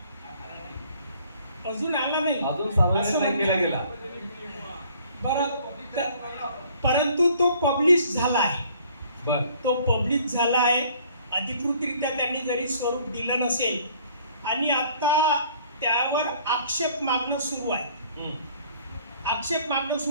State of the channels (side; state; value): both; inverted; correlation -0.57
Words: अजून आला नाही, अजून सार्वजनिक नाही केला गेला. बरं, परंतु तो पब्लिश झाला आहे. बर, तो पब्लिश झाला आहे. अधिकृतरित्या त्यांनी जरी स्वरूप दिलं नसेल आणि आता त्यावर आक्षेप मागणं सुरू आहे. आक्षेप मागणं